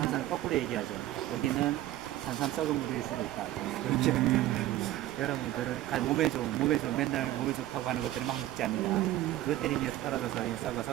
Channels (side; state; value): left; quieter; 14.8 dB